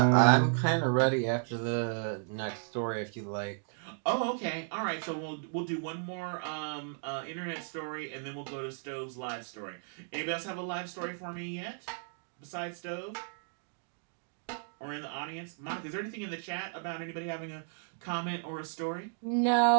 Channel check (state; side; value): silent; left; 55 dB below the other